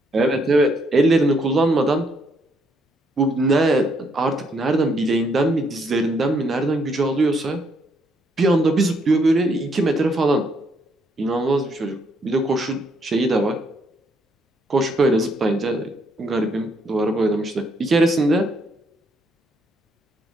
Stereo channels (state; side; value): normal; both; correlation 0.72